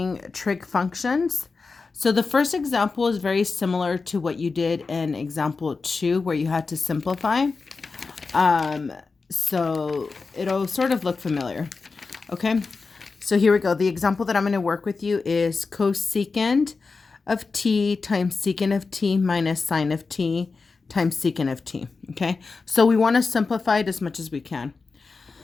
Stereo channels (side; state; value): right; quieter; 4.3 dB